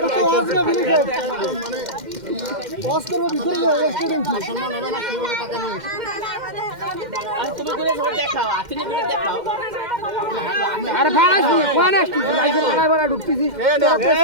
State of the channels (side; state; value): left; late; 2.1 ms